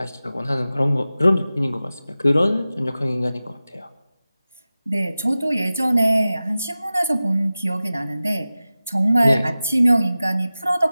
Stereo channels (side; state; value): both; inverted; correlation -0.96